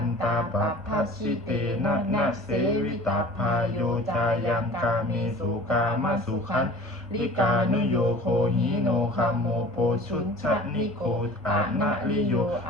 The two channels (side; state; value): both; normal; correlation 0.43